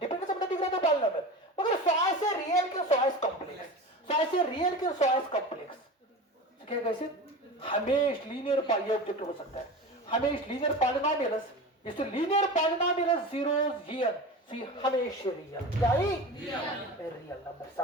करता है डिग्री ऑफ द पॉलिनोमियल मगर सॉय से रियल के सॉय कॉम्प्लेक्स सॉय से रियल के सॉय कॉम्प्लेक्स तो क्या कैसे हमेशा लीनियर ये ऑब्जेक्ट हो सकता है हमेशा लीनियर पॉलिनोमियल्स इस लीनियर पॉलिनोमियल्स जीरोस हियर सी हमेशा रियल क्या ही रियल नंबर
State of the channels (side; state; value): both; normal; correlation 0.30